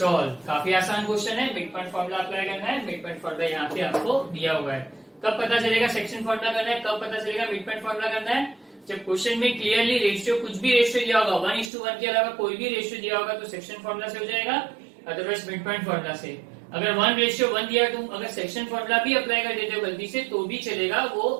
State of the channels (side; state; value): left; drops out; at 11.7 s